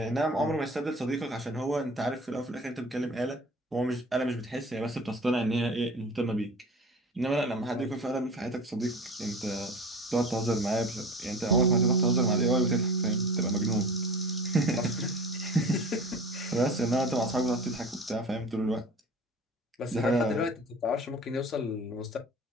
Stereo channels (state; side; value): normal; both; correlation 0.39